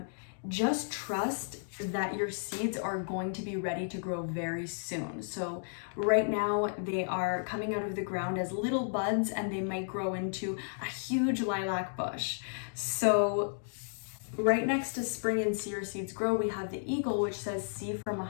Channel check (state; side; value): silent; right; digital silence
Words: just trust that your seeds are going to be ready to grow very soon. So right now they are coming out of the ground as little buds and they might grow into a huge lilac bush. So right next to spring and see your seeds grow, we have the eagle, which says see from a